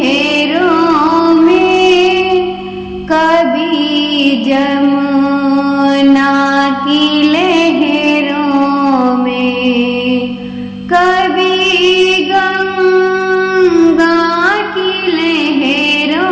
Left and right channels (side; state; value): both; identical; correlation 1.00